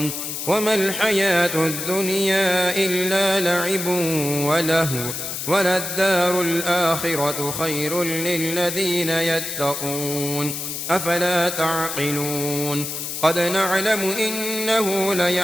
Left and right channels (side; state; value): left; noise; hiss, 5 dB below the sound